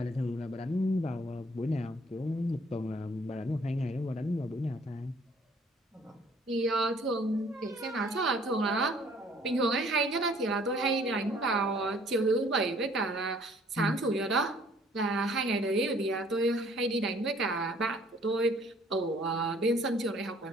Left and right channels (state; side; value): normal; both; correlation 0.58